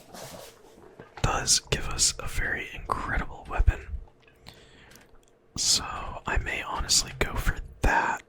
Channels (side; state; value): both; identical; correlation 1.00